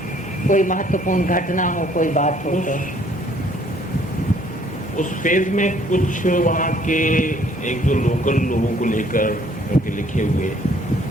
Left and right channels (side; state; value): both; normal; correlation 0.62